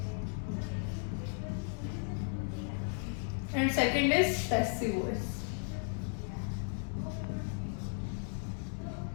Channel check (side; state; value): right; silent; 54 dB below the other